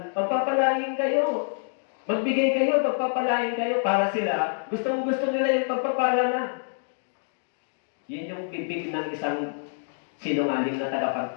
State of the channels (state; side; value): silent; right; digital silence